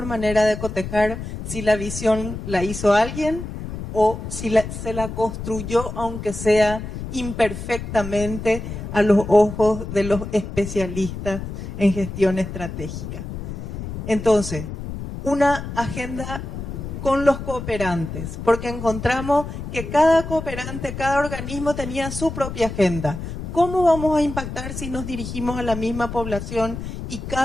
manera de cotejar si la visión la hizo alguien o si se la construyó, aunque sea imperfectamente, a los ojos de los especialistas en gestión estratégica. Entonces, una agenda con los cooperantes, porque encontramos que cada cooperante, cada organismo tenía su propia agenda. ¿Cómo vamos a impactar si nos dirigimos a la misma población y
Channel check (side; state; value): left; noise; rumble, 8 dB below the sound